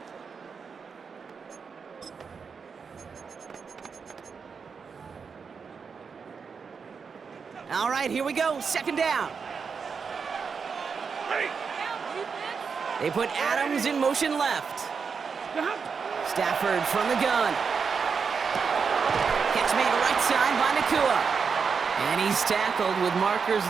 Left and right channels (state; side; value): quieter; left; 5.7 dB